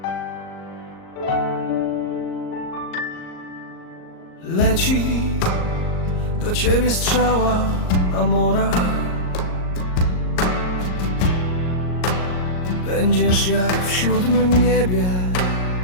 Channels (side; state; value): right; late; 38 ms